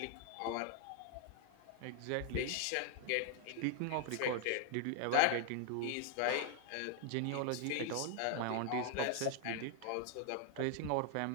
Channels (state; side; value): different; both; correlation 0.00